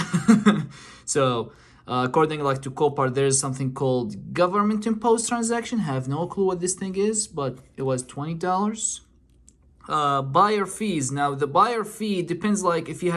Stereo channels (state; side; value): identical; both; correlation 1.00